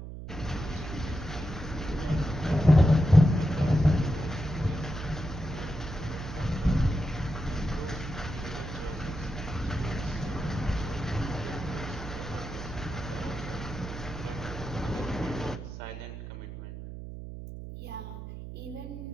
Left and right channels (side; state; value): right; noise; hum, 10 dB below the sound